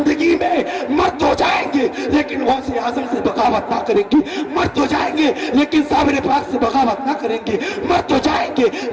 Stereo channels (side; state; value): both; identical; correlation 1.00